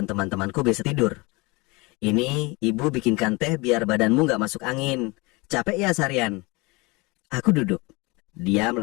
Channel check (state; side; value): quieter; right; 25.5 dB